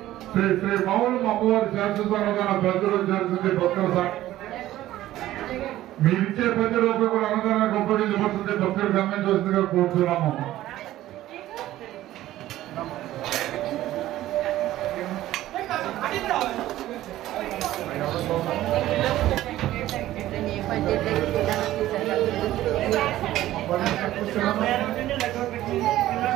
శ్రీ శ్రీ మౌనం అమ్మవారి శాశ్వత అన్నదాన ప్రజలు జరుగుతుంది. భక్తుల మీరిచ్చే ₹10 కూడా అన్నదానానికి ఉపయోగించబడుతుంది. భక్తులు గమనించవలసిందిగా కోరుతున్నాము.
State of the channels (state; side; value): quieter; left; 14.6 dB